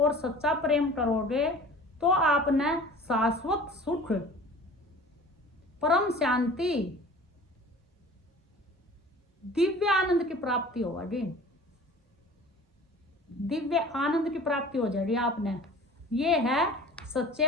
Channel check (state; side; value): normal; both; correlation 0.43